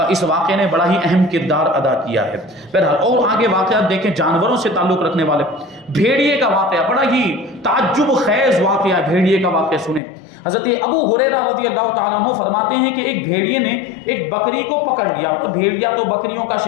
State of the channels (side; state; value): right; drops out; at 10.0 s